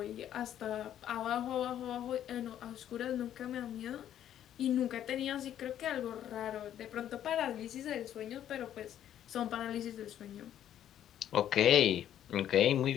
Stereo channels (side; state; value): right; quieter; 10.8 dB